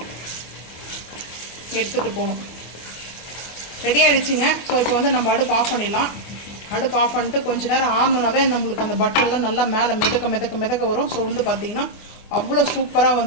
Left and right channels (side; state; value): right; late; 24 ms